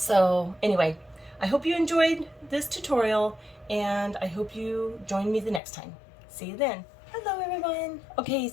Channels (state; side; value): drops out; right; at 5.6 s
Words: anyway, I hope you enjoyed this tutorial, and I hope you join me the next time. See you then. Hello everyone. Okay,